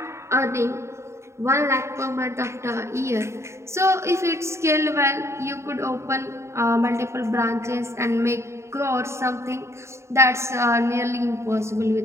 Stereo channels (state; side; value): late; left; 0.13 ms